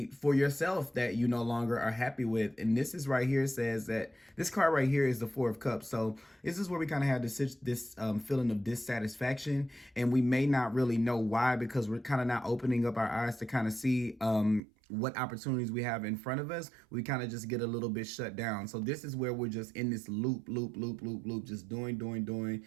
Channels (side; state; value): left; drops out; at 14.6 s